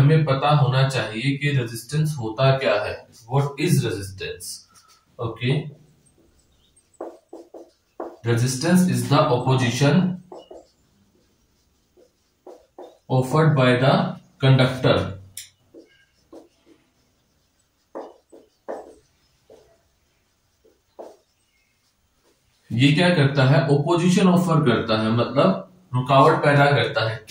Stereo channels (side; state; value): both; identical; correlation 1.00